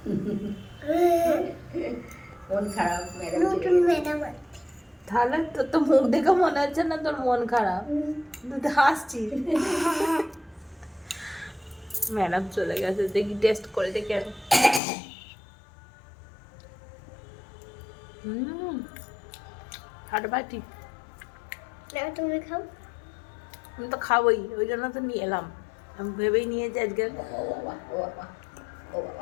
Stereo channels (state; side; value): drops out; right; at 14.8 s